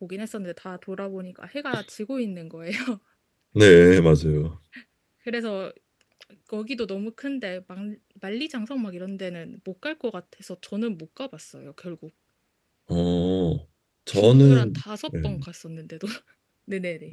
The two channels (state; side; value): identical; both; correlation 1.00